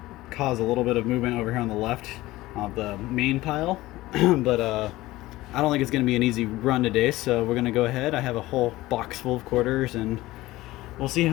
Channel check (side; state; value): right; quieter; 17.8 dB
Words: caused a little bit of movement over here on the left of the main pile. But I don't think it's going to be an easy run today, so we're going to go ahead. I have a whole box full of quarters, and we'll see